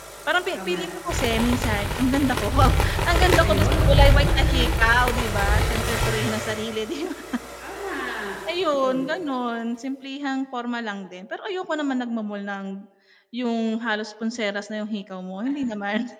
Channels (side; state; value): both; identical; correlation 1.00